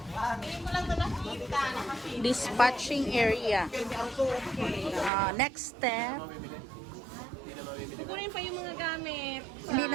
Dispatching area. Next step. Kukunin pa yung mga gamit. Hindi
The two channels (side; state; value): left; drops out; at 5.1 s